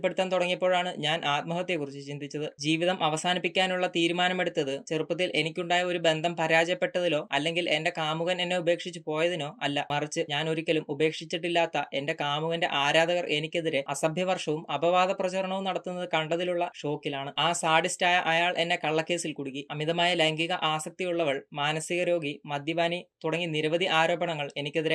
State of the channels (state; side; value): identical; both; correlation 1.00